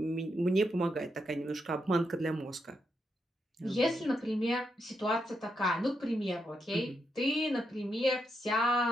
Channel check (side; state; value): both; normal; correlation 0.82